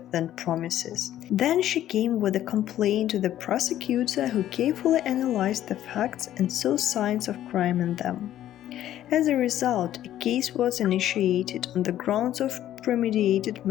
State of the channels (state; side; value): quieter; right; 12.3 dB